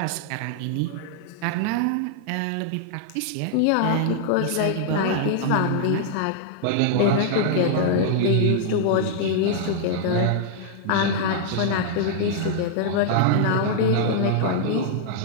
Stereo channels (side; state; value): both; different; correlation -0.01